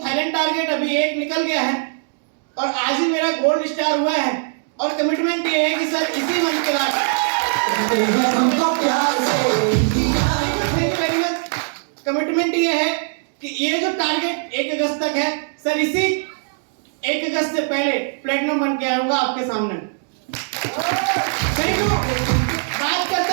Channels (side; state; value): left; silent; 65 dB below the other